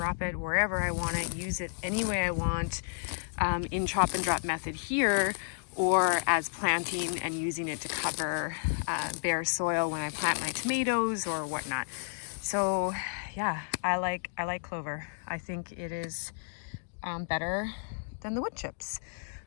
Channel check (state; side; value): silent; right; digital silence